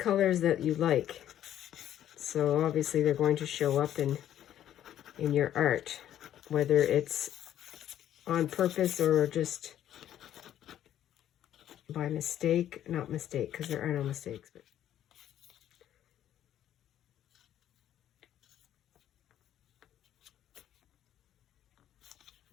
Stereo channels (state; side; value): quieter; right; 11.3 dB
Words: that you like. So obviously they're going to show up in your art, whether it's on purpose or just by mistake. Not mistake, because there are no mistakes. But